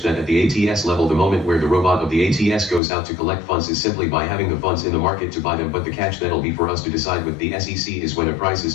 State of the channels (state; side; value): drops out; right; at 2.8 s